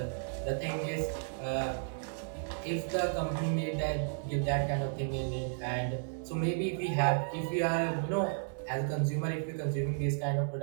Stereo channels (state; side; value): silent; left; 55 dB below the other